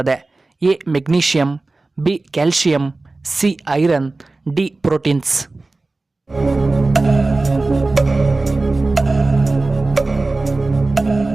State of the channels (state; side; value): quieter; left; 3.3 dB